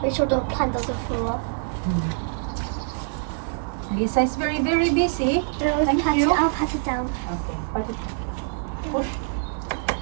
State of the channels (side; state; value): left; silent; 62 dB below the other